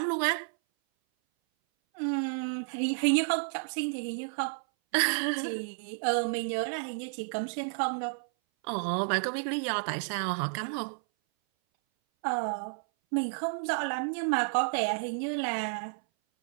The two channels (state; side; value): silent; left; 57 dB below the other